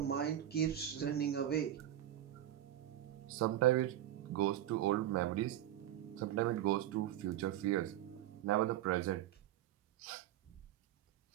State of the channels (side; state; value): left; quieter; 12.4 dB